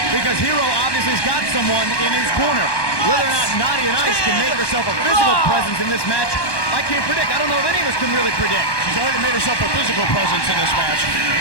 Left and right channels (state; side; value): late; right; 1.1 ms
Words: because Hero obviously has got someone in his corner. Whether or not Nadia Nice can make herself a physical presence in this match, I can't predict. I don't know if any of us can really predict. She's already made herself a physical presence in this match.